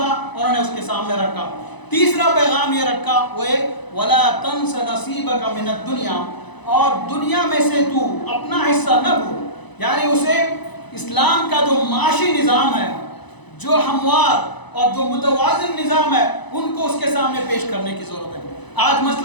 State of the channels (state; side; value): late; right; 1.0 ms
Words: انہوں نے اس کے سامنے رکھا۔ تیسرا پیغام یہ رکھا وہ ہے وَلَا تَنْسَ نَصِيبَكَ مِنَ الدُّنْيَا، اور دنیا میں سے تو اپنا حصہ نہ بھول، یعنی اسے اسلام کا جو معاشی نظام ہے، جو ہموار اور جو متوازن نظام ہے، ان کو اس کے سامنے پیش کرنے کی ضرورت ہے۔ آج